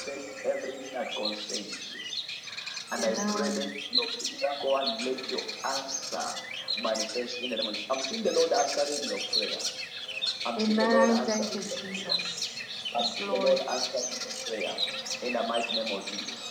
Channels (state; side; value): identical; both; correlation 1.00